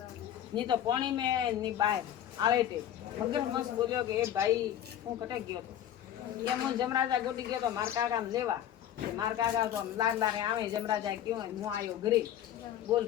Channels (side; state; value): right; quieter; 10.9 dB